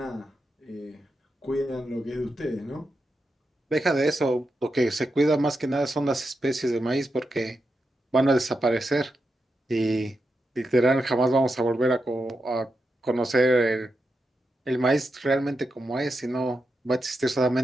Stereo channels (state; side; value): normal; both; correlation 0.87